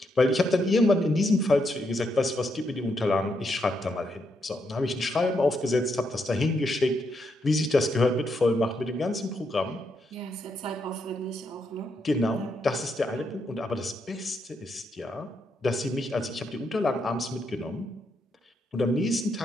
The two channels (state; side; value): normal; both; correlation 0.79